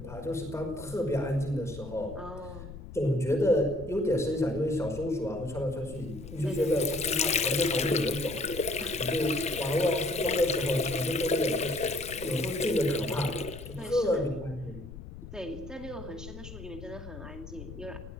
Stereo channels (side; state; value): left; noise; rumble, 13 dB below the sound